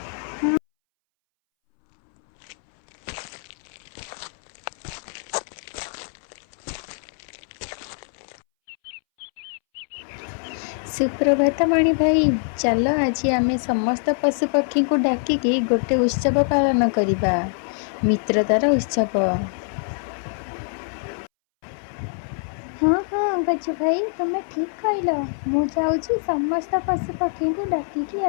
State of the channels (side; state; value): right; silent; 63 dB below the other